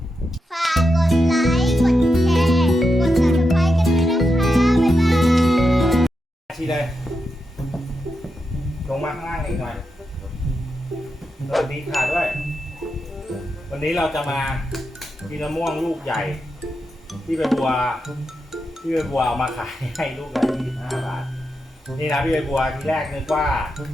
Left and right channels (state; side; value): normal; both; correlation 0.86